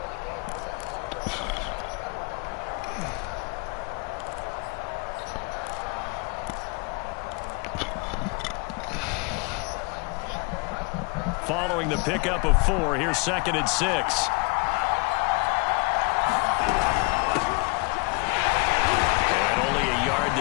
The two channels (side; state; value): right; quieter; 30.4 dB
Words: Following the pickup of 4, here's 2nd and 6. And only a yard